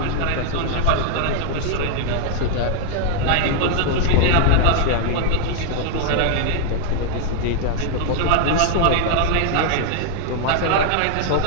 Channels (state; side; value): different; both; correlation -0.01